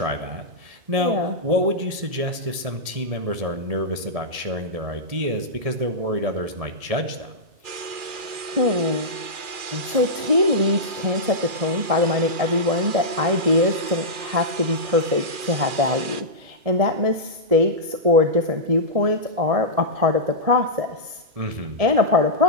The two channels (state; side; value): late; left; 2.4 ms